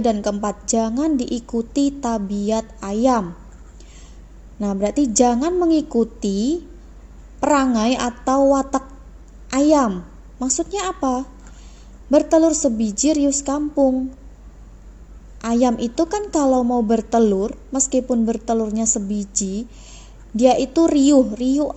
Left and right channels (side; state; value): both; identical; correlation 1.00